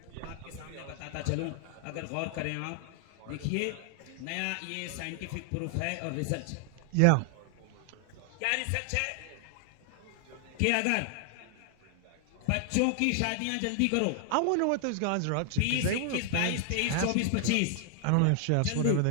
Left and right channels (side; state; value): both; different; correlation 0.00